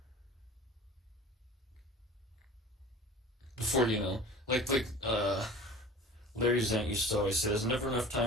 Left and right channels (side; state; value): both; normal; correlation 0.40